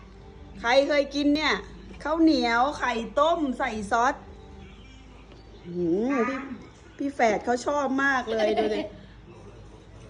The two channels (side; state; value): both; identical; correlation 1.00